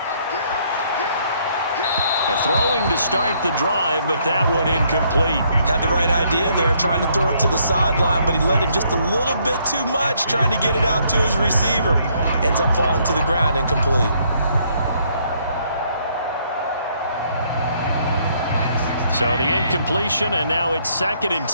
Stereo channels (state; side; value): inverted; both; correlation -0.69